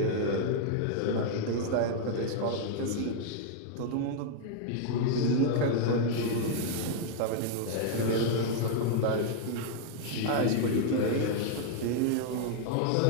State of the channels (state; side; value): different; both; correlation -0.01